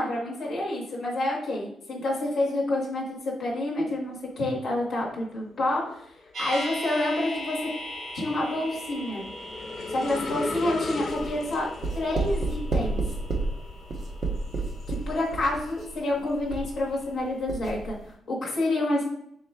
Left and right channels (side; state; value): both; normal; correlation 0.81